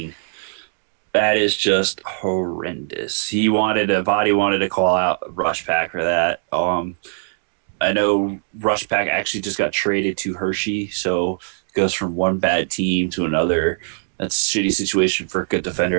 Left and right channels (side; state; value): left; silent; 65 dB below the other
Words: That is just horrendous. Vatty wanted to call out Rush Pack for that. I know Rush Pack actually just got traded to Hershey, so it goes from one bad team to another. That's a shitty situation for a good